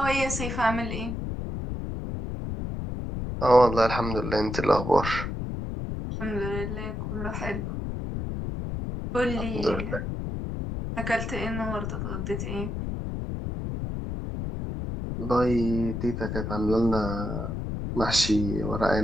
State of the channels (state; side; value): noise; left; rumble, 4 dB below the sound